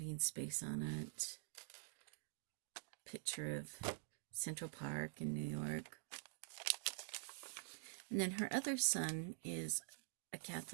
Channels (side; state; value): left; silent; digital silence